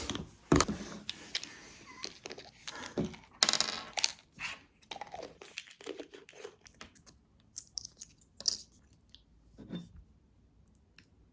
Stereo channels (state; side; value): identical; both; correlation 1.00